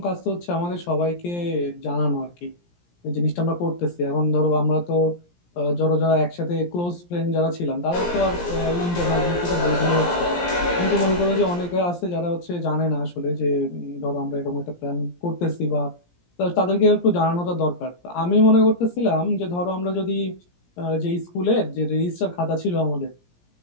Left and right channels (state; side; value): late; right; 17 ms